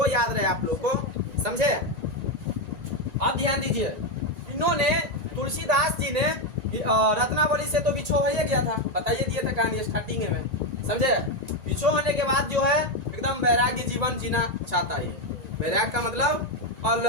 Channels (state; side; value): late; left; 1.9 ms